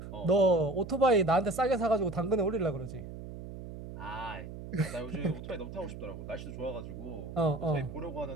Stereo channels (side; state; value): right; noise; hum, 11 dB below the sound